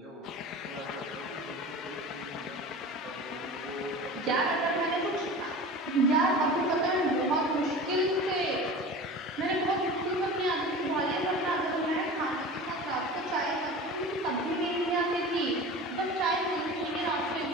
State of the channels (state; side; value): normal; both; correlation 0.35